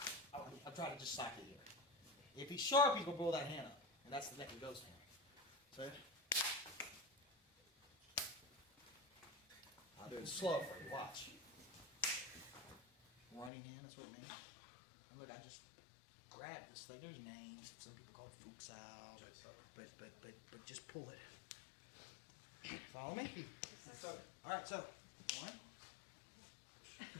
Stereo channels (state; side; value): drops out; right; at 13.5 s